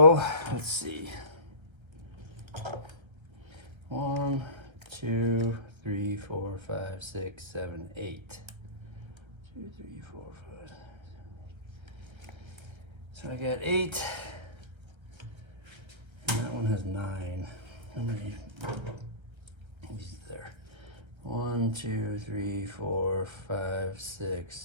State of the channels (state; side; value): late; left; 1.3 ms